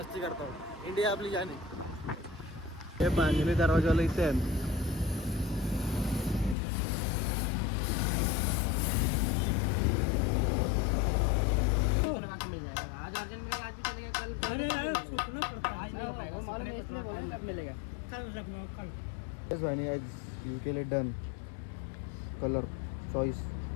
करतो. इंडिया आपली जाण आहे. हे बांधणी दरवाजाला इथे आहे. आज अर्जेंट मिलेगा, आज भी चलेगा, कल वो मालूम है इसलिए बोला कब मिलेगा. यू के लिए डन. कलर चॉइस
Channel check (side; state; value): right; drops out; at 6.6 s